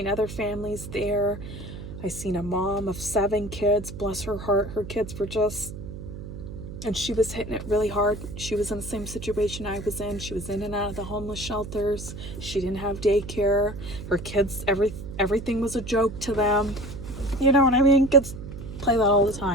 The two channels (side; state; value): right; noise; hum, 10 dB below the sound